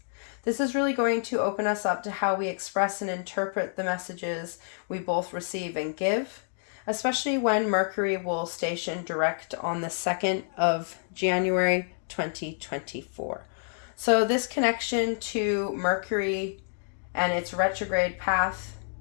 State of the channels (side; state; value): right; silent; digital silence